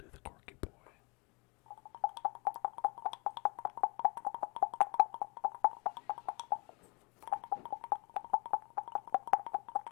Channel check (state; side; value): quieter; right; 29.5 dB